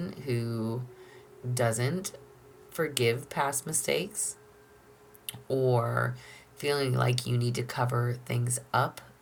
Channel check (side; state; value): both; identical; correlation 1.00